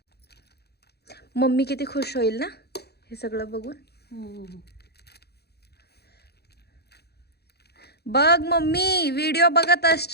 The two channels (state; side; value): late; right; 0.47 ms